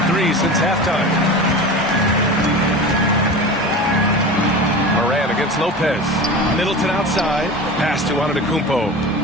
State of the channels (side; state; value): both; normal; correlation 0.31